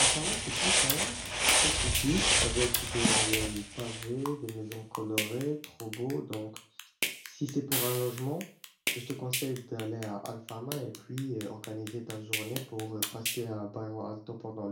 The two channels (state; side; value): identical; both; correlation 1.00